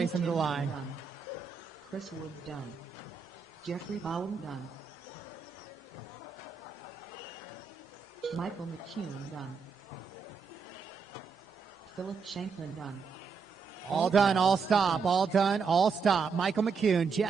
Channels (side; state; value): left; quieter; 5.5 dB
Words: them to the line. Chris Wood done. Jeffrey Bauer done. Michael McCune done. Philip Shanklin done. All done, all stop, all done, all stop. Michael McCune,